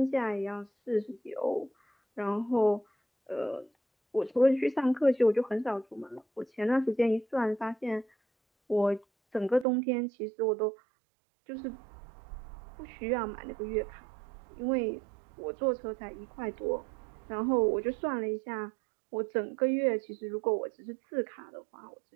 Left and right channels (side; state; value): left; drops out; at 9.7 s